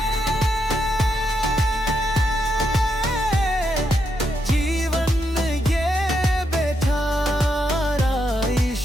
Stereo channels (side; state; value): both; normal; correlation 0.81